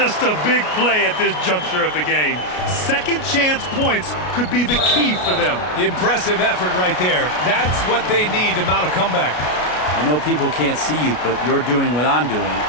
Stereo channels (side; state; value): right; late; 33 ms